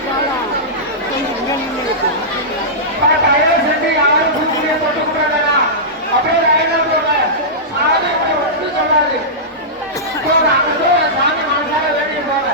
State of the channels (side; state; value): both; normal; correlation -0.15